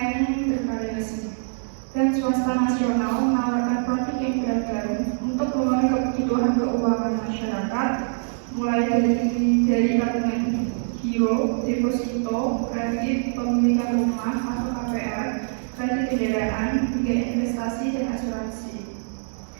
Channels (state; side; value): silent; left; digital silence